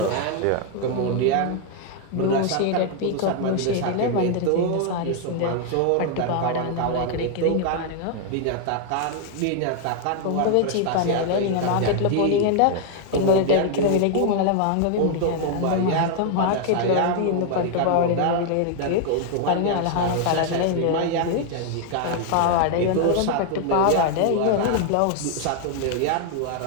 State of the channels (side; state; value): both; different; correlation 0.00